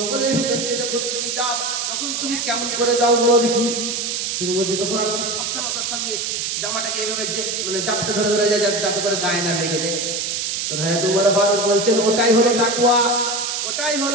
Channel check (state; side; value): noise; right; hiss, 2 dB below the sound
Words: ভিতর দিয়ে যখন তুমি যাও, তখন তুমি কেমন করে যাও বলো দেখি? তুমি বলছো তখন আমি খুব সাবধানতার সঙ্গে জামাটাকে এইভাবে যে মানে চাপটে ধরে ধরে যায় যাতে করে গায়ে না লেগে যায়। তো হ্যাঁ, তোমার ফারুক বলছেন ওটাই হলো তাকওয়া, ওটাই